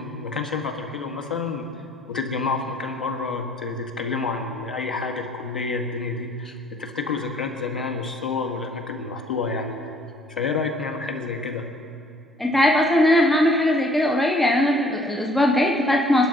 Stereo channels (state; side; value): normal; both; correlation 0.58